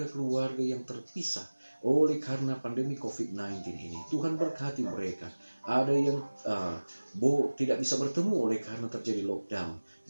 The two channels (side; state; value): both; inverted; correlation -1.00